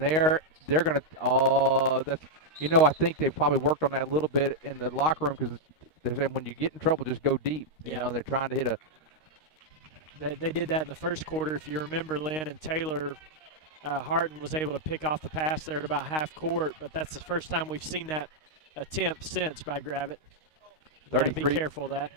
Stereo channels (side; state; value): right; late; 13 ms